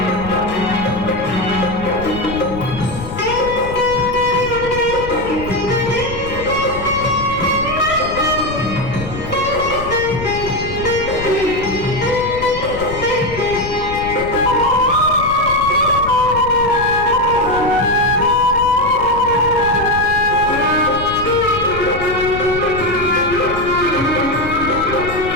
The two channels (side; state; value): left; noise; rumble, 10 dB below the sound